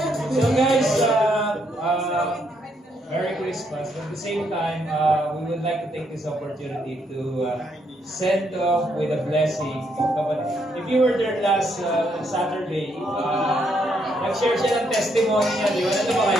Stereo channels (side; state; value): both; normal; correlation 0.75